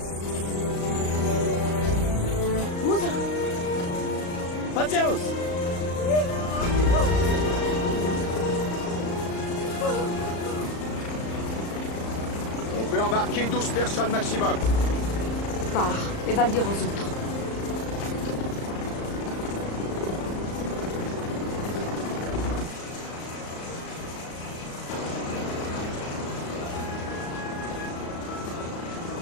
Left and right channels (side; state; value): right; late; 35 ms